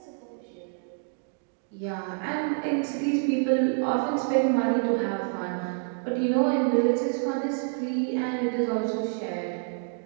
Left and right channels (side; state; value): left; silent; digital silence